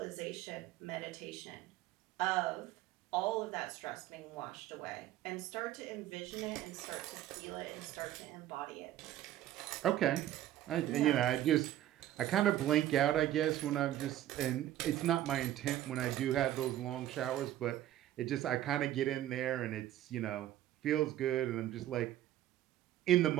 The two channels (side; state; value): left; quieter; 13.1 dB